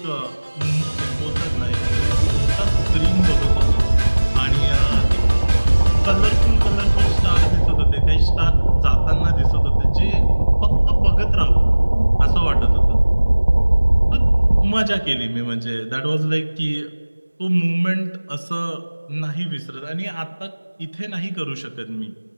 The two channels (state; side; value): inverted; both; correlation -1.00